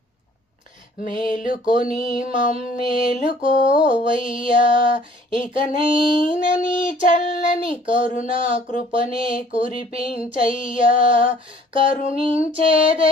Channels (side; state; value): both; normal; correlation 0.56